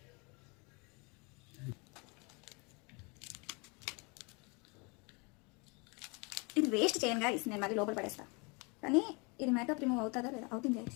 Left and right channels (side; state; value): right; quieter; 30.8 dB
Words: ఇది వేస్ట్ చేయను గాయస్, నేను మళ్ళీ లోపల పడేస్తా. కానీ ఇది మేకప్ రిమూవ్ అవుతుందా లేదా? అవుతుంది